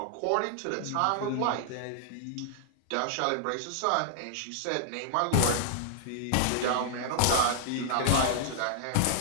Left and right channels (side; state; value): both; different; correlation -0.01